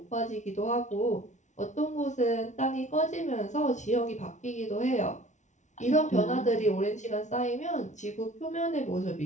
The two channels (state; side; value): late; right; 0.35 ms